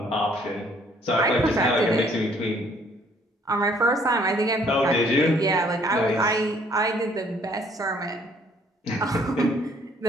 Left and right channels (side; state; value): both; normal; correlation 0.62